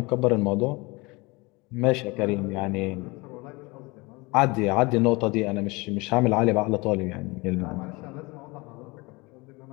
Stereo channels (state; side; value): quieter; right; 25.0 dB